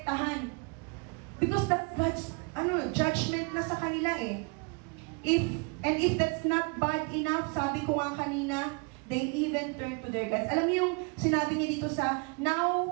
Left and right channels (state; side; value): quieter; left; 33.1 dB